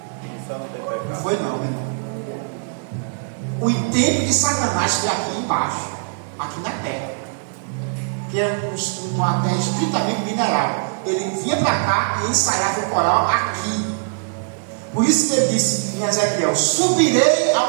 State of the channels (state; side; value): silent; left; 65 dB below the other